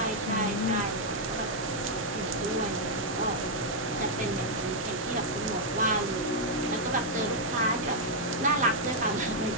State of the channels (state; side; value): normal; both; correlation -0.03